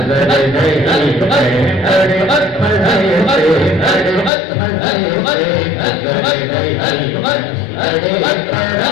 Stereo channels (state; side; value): drops out; right; at 4.3 s